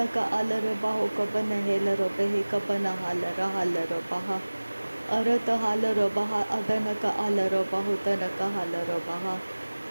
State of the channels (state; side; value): inverted; both; correlation -1.00